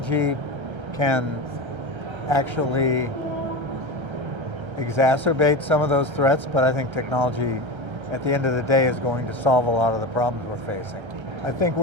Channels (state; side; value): late; left; 1.3 ms